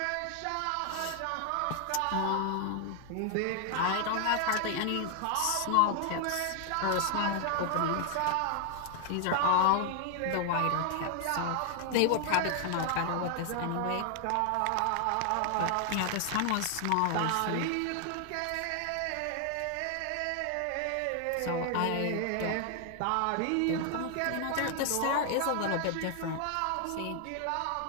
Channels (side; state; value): both; different; correlation 0.00